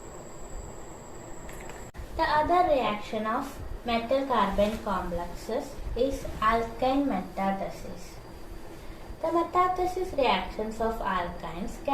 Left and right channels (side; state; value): both; identical; correlation 1.00